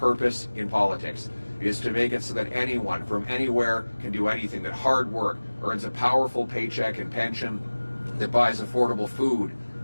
in politics. It is to make it so that anyone from anywhere can do anything, that hard work earns a powerful paycheck and pension, that buys affordable food,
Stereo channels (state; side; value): inverted; both; correlation -1.00